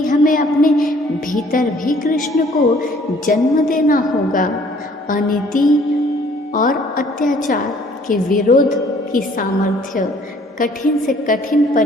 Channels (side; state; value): both; normal; correlation 0.58